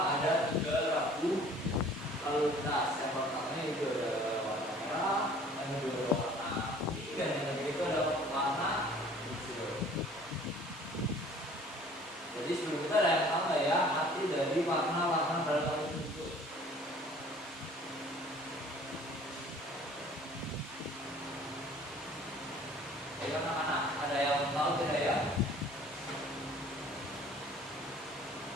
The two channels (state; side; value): normal; both; correlation 0.51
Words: ada 3 rambu lalu lintas. Yang pertama itu ada warna merah, yang kedua warna putih, dan yang ketiga itu ada warna hijau. Jadi sebelum kita ada yang tahu ya arti dari warna-warna dalam tersebut. Ayo anak-anak, ada yang tahu tidak ya?